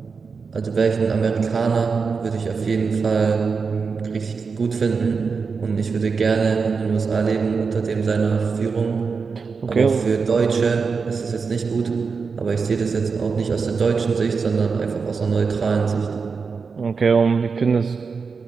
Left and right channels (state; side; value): quieter; left; 5.1 dB